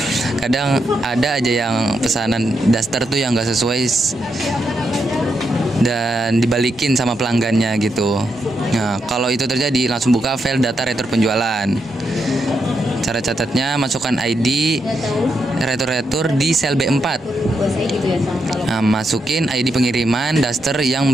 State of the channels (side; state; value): both; normal; correlation 0.83